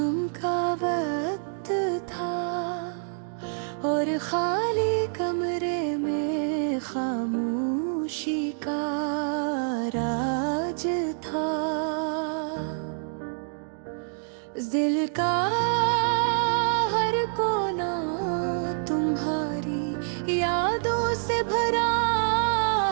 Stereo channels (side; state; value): left; silent; digital silence